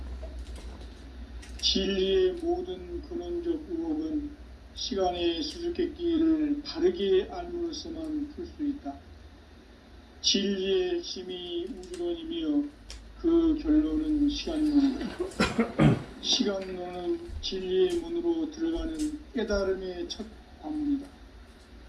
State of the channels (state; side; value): identical; both; correlation 1.00